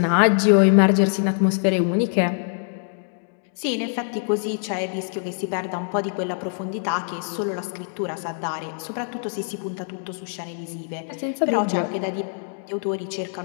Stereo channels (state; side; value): silent; right; 62 dB below the other